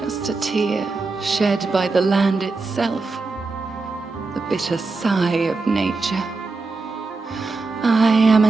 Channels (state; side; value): quieter; left; 3.8 dB